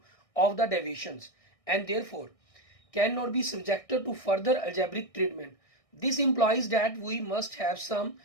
of the deviations and therefore cannot be subjected to further algebraic treatment. This implies that we must have some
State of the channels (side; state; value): right; late; 1.6 ms